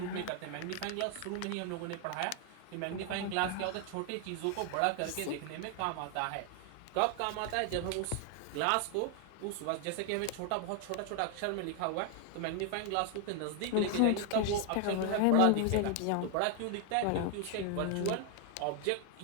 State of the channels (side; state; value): both; different; correlation 0.00